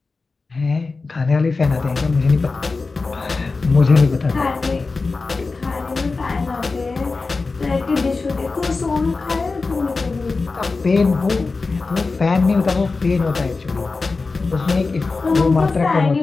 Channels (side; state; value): right; quieter; 4.0 dB